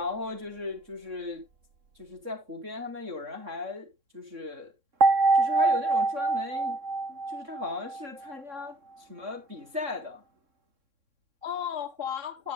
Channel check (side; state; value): left; late; 3.6 ms